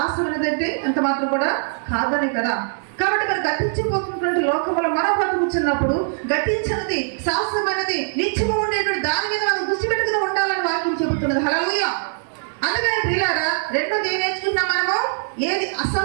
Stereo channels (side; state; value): left; silent; digital silence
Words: ఏదంటే ఎంత మాత్రం కూడా కాదనే కదా. కాబట్టి మరి గతించిపోతున్నటువంటి లోకంలో మనం బ్రతుకుతున్నప్పుడు గతించినది, శాశ్వతమైనది, నిత్యము ఉండేటువంటి దాని మీద మనం దృష్టి పెట్టుకుని ఉండాలని వాక్యం చెబుతున్నది. హల్లెలూయా. అందుకని ప్రియులారా, రెండోది ఏం నేర్చుకుంటాం మనము? ఏది